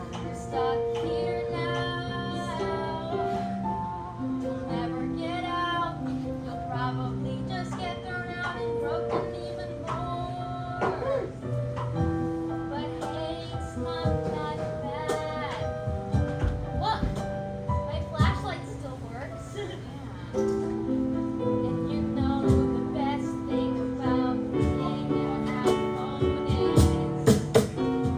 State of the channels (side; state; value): both; identical; correlation 1.00